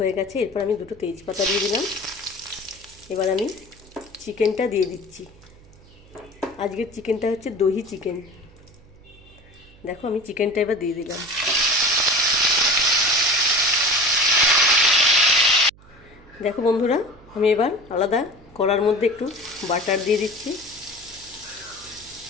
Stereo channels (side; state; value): right; noise; hum, 25 dB below the sound